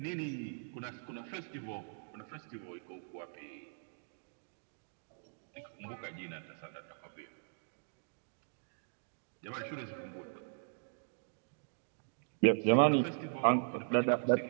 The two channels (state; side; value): silent; left; digital silence